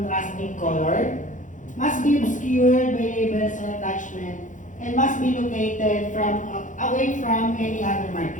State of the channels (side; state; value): right; late; 0.37 ms